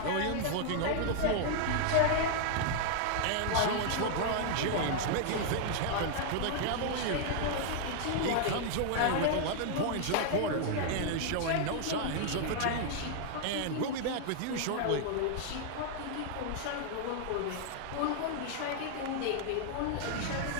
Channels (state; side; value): different; both; correlation 0.00